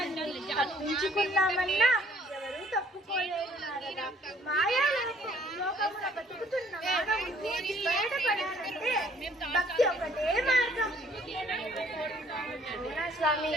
తప్పించుకున్నామన్నా ఎవరూ తప్పుకోలేరు నారద. మాయా లోకమున బతుకుతున్న మానవుడు బయటపడాలంటే భక్తి ఒకటే మార్గం. స్వామి,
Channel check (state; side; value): normal; both; correlation 0.60